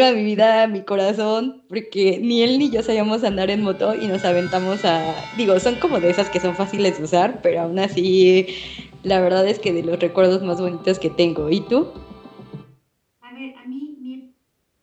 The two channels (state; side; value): identical; both; correlation 1.00